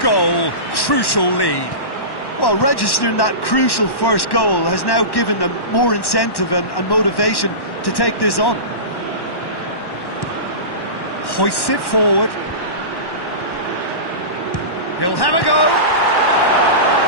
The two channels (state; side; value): late; right; 1.1 ms